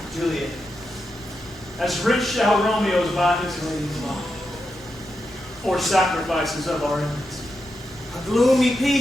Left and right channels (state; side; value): normal; both; correlation 0.87